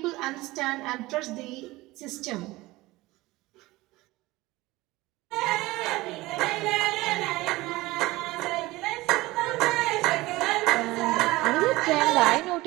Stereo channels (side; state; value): left; quieter; 19.6 dB